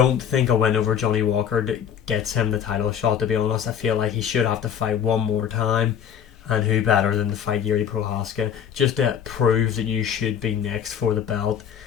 think a win over Johnny Walker gets him the title shot, to be honest. I feel like he should have to fight one more time. And who better than to fight Yuri Prohaska, just to prove that you should be next for the belt.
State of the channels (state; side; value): quieter; right; 8.6 dB